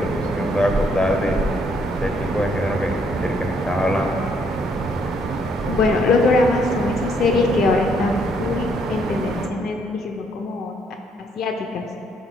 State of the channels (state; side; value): normal; both; correlation 0.70